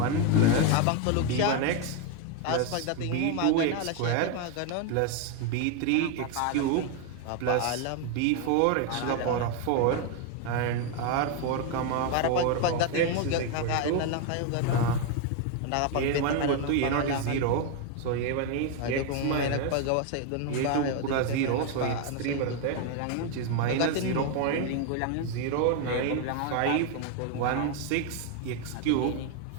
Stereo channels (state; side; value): different; both; correlation 0.01